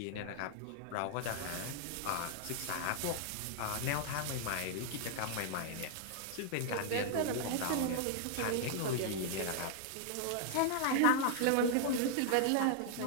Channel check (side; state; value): both; different; correlation -0.01